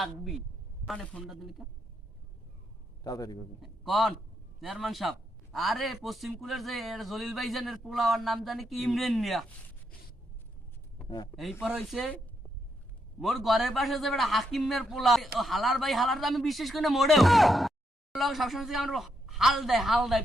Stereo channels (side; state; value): both; normal; correlation 0.80